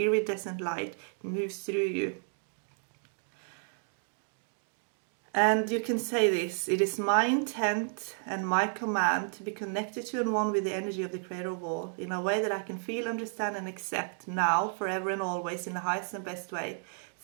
light. It moves through you. And you can say this: it is my intent and my command to be connected to and one with the energy of the Creator of all, in a way that I can feel, understand and accept now, forever and always, in the highest and best way.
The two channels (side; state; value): left; silent; 56 dB below the other